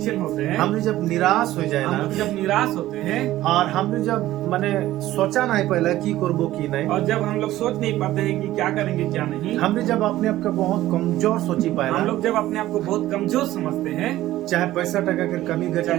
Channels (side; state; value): left; quieter; 15.1 dB